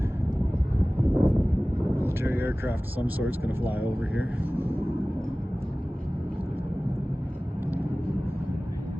Military aircraft of some sort's going to fly over here.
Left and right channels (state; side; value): normal; both; correlation 0.98